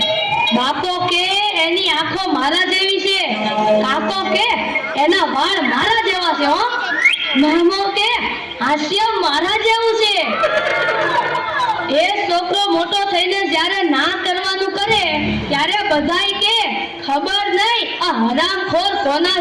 બાપો કે એની આંખો મારા જેવી છે, કાકો કે એના વાળ મારા જેવા છે, હો મામો કે હાસ્ય મારા જેવું છે. એ છોકરો મોટો થઈને જ્યારે ના કરવાનું કરે ત્યારે બધાય કે ખબર નહીં આ હરામખોર કોના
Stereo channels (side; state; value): both; identical; correlation 1.00